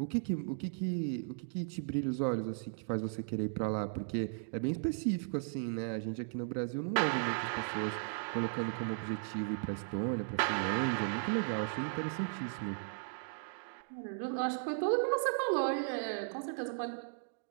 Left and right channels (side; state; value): left; silent; digital silence